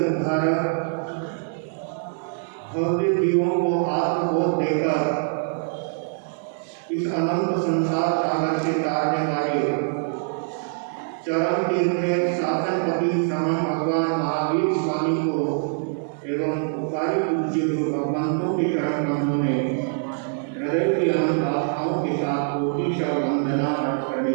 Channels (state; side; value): silent; left; digital silence